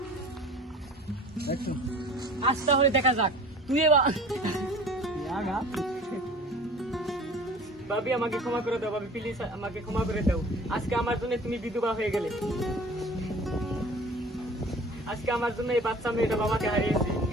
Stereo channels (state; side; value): normal; both; correlation 0.44